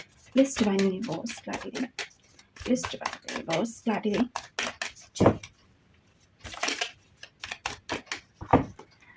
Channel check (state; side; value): identical; both; correlation 1.00